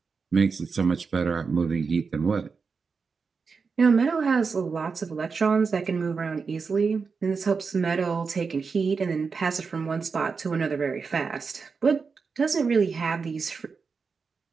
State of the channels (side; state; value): left; quieter; 5.1 dB